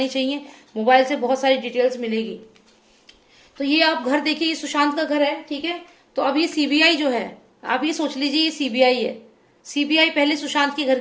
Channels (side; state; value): both; identical; correlation 1.00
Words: चाहिए, मोबाइल से बहुत सारी डिटेल्स मिलेगी। तो ये आप घर देखिए, ये सुशांत का घर है, ठीक है। तो अब ये सीबीआई जो है, आप ये सोच लीजिए ये सीबीआई है। सीबीआई पहले सुशांत के घर